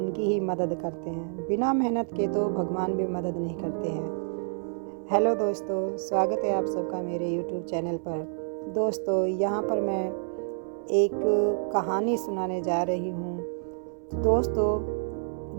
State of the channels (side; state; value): left; silent; 59 dB below the other